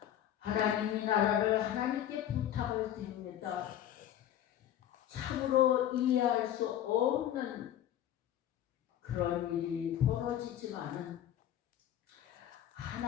하나님이 나라를 하나님께 부탁을 드립니다. 참으로 이해할 수 없는 그런 일이 벌어지지만은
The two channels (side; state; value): right; quieter; 11.2 dB